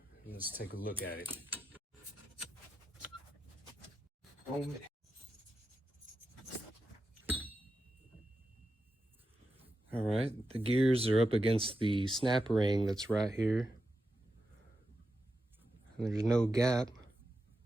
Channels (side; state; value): both; normal; correlation 0.89